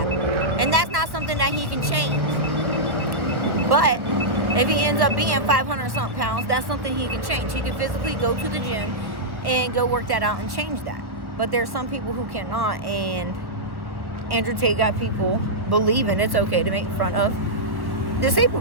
And that's not something that he can change. But if he ends up being 500-something pounds, that's something he can change. He can physically go to the gym and go work that out and change that. But there's some people who cannot, and Andrew Tate got people believing it's okay to make fun of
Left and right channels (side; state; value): left; late; 1.2 ms